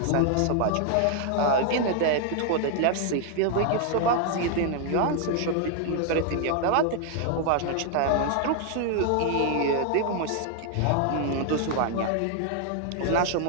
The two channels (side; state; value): both; different; correlation 0.00